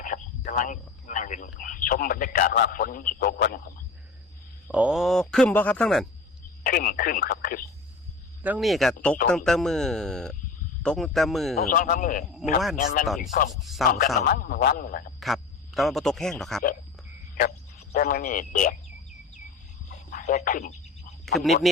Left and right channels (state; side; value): quieter; right; 4.0 dB